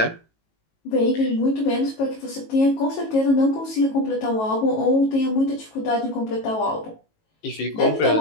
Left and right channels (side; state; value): right; late; 18 ms